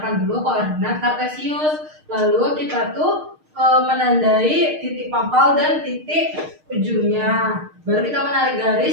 dulu koordinat kartesius. Lalu kita tuh menandai titik pangkal dan titik ujungnya. Baru kita menarik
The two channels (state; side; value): late; left; 6.5 ms